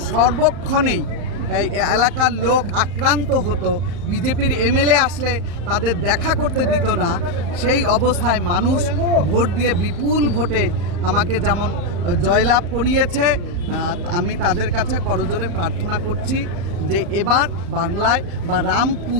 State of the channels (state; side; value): late; left; 35 ms